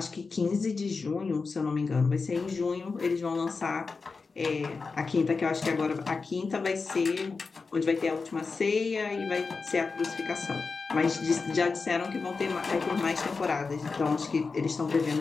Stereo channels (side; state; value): right; quieter; 4.5 dB